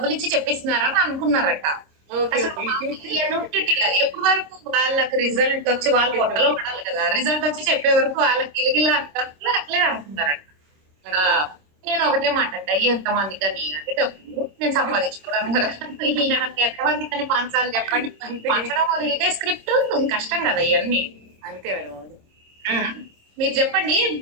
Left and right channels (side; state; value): left; late; 26 ms